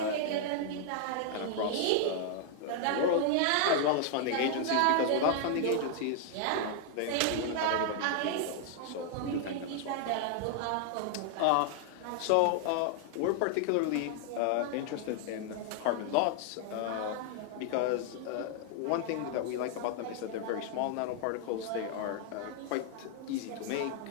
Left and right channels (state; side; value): different; both; correlation 0.00